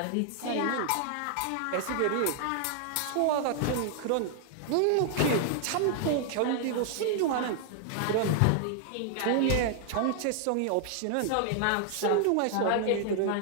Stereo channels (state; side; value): different; both; correlation 0.00